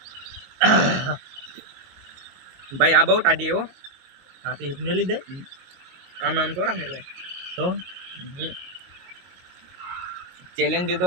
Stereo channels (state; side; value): late; left; 22 ms